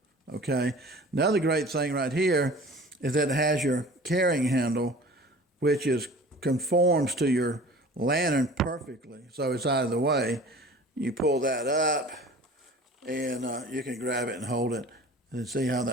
Okay. Another great thing right here is that it has your carrying handle, which conforms to your lantern perfectly. So it's out of the way. You pull that up and you can grab it and hold it and see how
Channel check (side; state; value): both; normal; correlation 0.43